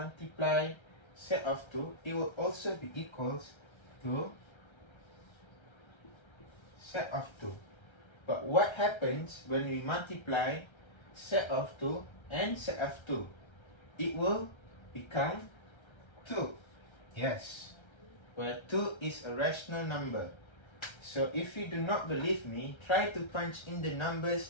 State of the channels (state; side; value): late; right; 1.3 ms